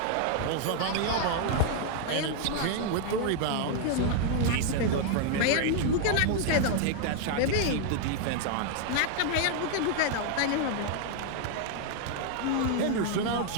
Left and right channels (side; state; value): both; different; correlation 0.00